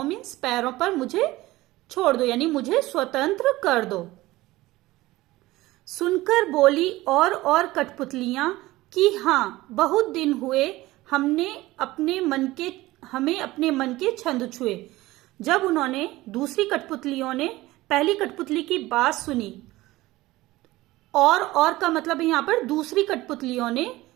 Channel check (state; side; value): quieter; left; 18.3 dB